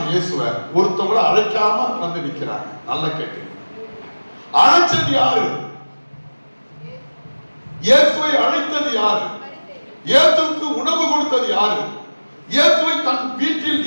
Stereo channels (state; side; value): inverted; both; correlation -1.00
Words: இயேசுவை, ஒருத்தவங்களை அழைக்காம வந்து நிக்கிறாங்க. நல்லா கேட்டு, அழைச்சது யாரு? இயேசுவை அழைத்தது யாரு? இயேசுவுக்கு உணவு கொடுத்தது யாரு? இயேசுவை தன் வீட்டில்